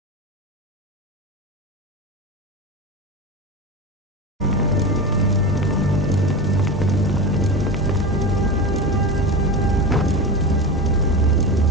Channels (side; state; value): both; normal; correlation 0.24